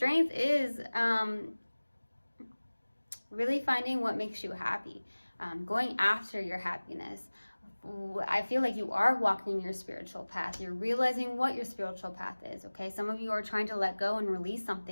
is really finding what makes you happy, going after your happiness, I feel like you are walking your spiritual path. You're realizing what your spiritual path is, okay? Some of you are trying to let go and release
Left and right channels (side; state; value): both; inverted; correlation -1.00